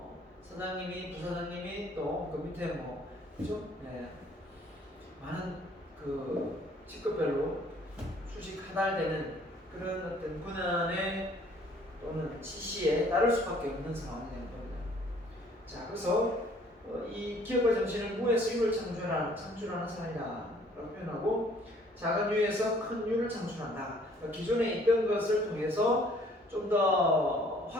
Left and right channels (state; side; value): normal; both; correlation 0.58